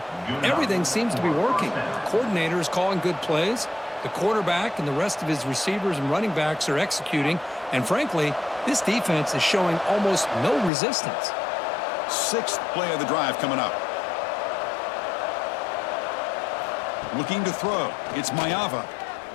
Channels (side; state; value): right; drops out; at 10.7 s